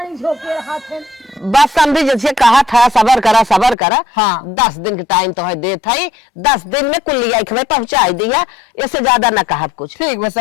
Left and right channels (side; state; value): right; drops out; at 3.8 s